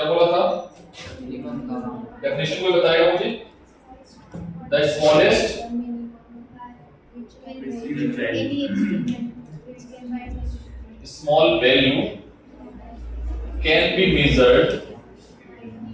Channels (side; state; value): both; identical; correlation 1.00